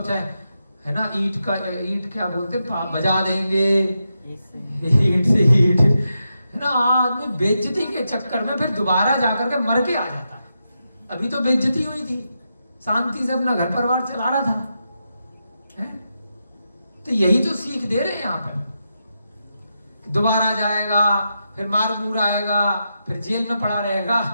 चाहे, है ना, ईट क्या बोलते, बजा देंगे, ईट से ईट, है ना। आदमी बेइज्जती के चक्कर में फिर दोबारा जाकर के मर के आ जाता है। अभी तो बेइज्जती हुई थी, शांति से अपना घर परिवार चला रहा था, है? तो यही तो सीख दे रहे हैं यहाँ पर, दोबारा जाएगा, फिर मार मूर आएगा, फिर जेल में पड़ा रहेगा,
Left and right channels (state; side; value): inverted; both; correlation -0.86